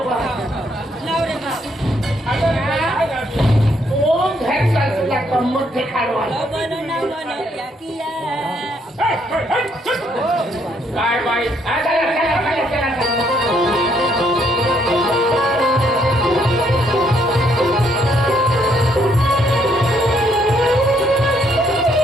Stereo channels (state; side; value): normal; both; correlation 0.70